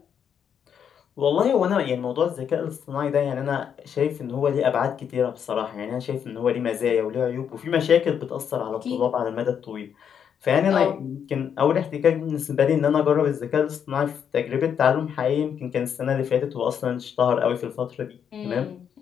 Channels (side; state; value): right; quieter; 8.0 dB